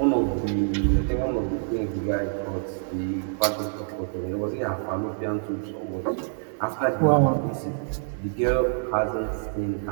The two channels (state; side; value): silent; left; digital silence